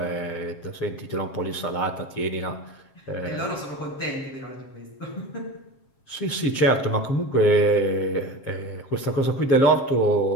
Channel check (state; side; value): late; right; 7.4 ms